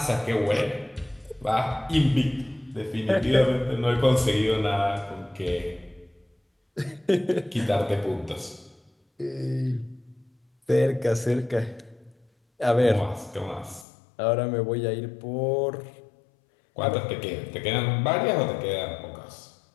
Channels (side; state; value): right; drops out; at 13.9 s